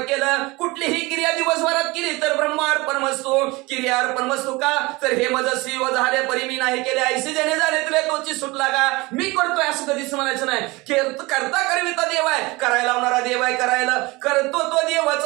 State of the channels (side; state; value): left; quieter; 23.2 dB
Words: कुठलीही क्रिया दिवसभरात केली तर ब्रह्मार्पण वस्तू क्रिया अर्पण वस्तू का. तर हे मजस्वी व झाले परी मी नाही केले, ऐसे जने झाले तुला तोची सुटला का. मी करतोय असं कधीच म्हणायचं नाही. करता करविता देव आहे, करायला लावणारा देव आहे, करायला करतो तो देवाच